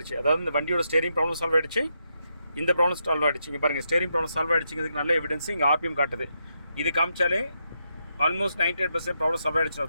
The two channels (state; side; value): inverted; both; correlation -0.81